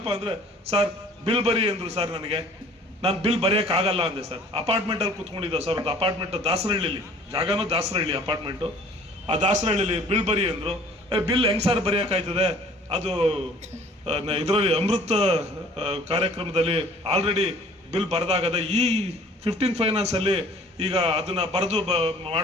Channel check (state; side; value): normal; both; correlation 0.51